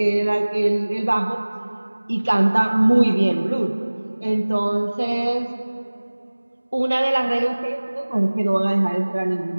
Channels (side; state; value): both; inverted; correlation -1.00